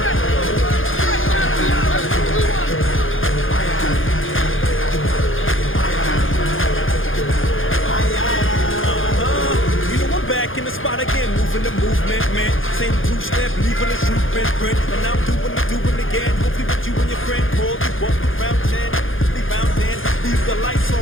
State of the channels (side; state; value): right; late; 0.59 ms